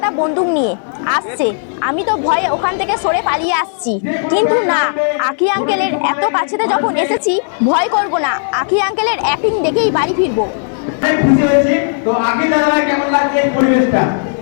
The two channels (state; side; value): silent; right; digital silence